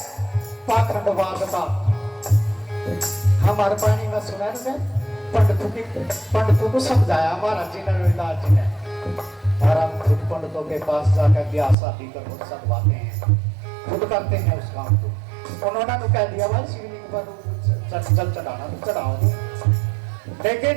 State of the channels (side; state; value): left; drops out; at 11.8 s